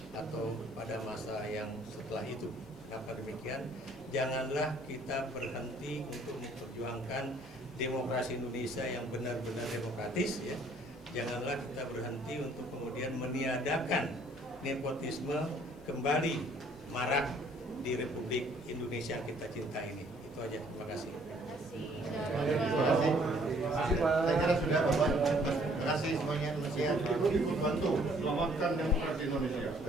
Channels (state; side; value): normal; both; correlation 0.61